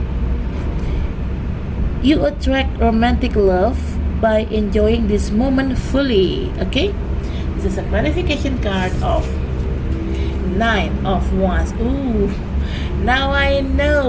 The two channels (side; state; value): both; identical; correlation 1.00